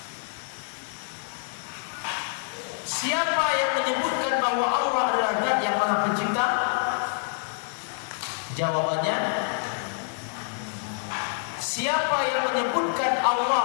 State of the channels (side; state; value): right; silent; 60 dB below the other